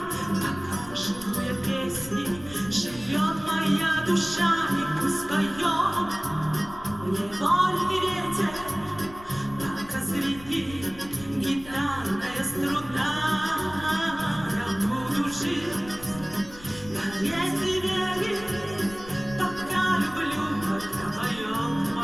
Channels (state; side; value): noise; left; rumble, 18 dB below the sound